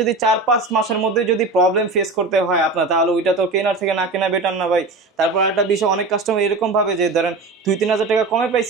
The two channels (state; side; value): quieter; left; 3.5 dB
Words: 4-5 মাসের মধ্যে যদি প্রবলেম ফেস করতে হয় আপনার, তাহলে ওইটা তো কেনার থেকে না কেনা বেটার না ভাই? তারপর একটা বিষয়, অনেক কাস্টমার এরকম ভাবে যে ধরেন 2-3000 টাকা কমে